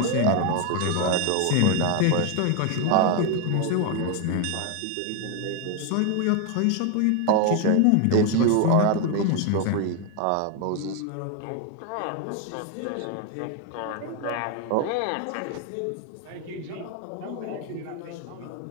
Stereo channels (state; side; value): different; both; correlation 0.01